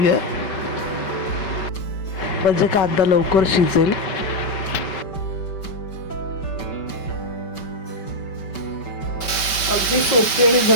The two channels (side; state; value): right; late; 5.2 ms